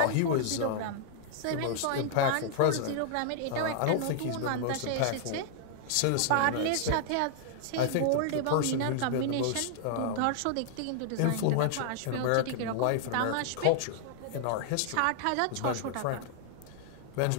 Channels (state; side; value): different; both; correlation -0.01